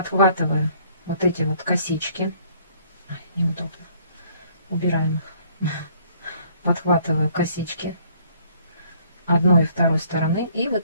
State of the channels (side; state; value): both; inverted; correlation -0.61